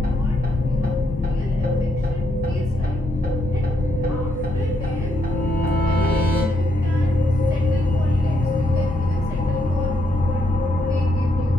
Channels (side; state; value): both; normal; correlation 0.76